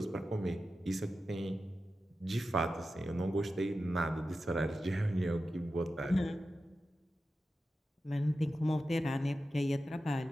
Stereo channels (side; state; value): both; normal; correlation 0.92